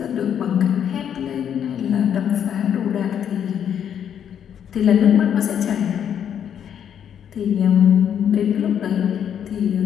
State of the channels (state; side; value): quieter; right; 8.9 dB